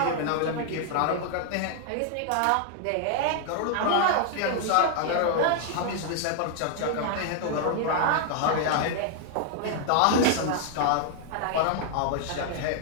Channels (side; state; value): both; different; correlation 0.00